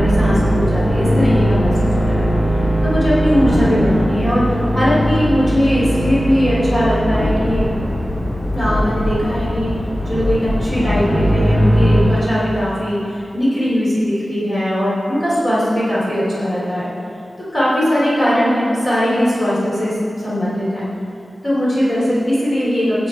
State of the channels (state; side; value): normal; both; correlation 0.95